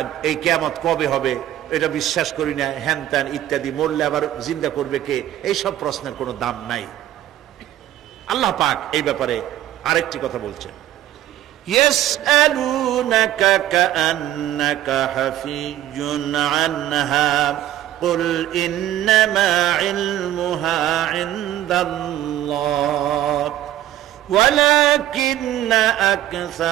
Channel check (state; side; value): quieter; left; 13.1 dB